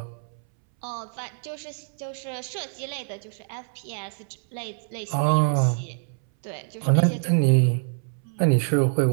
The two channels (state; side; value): silent; left; 60 dB below the other